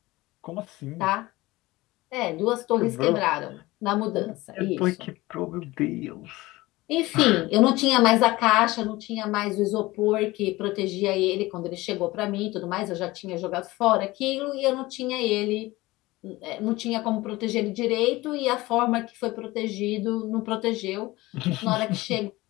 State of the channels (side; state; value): right; quieter; 19.7 dB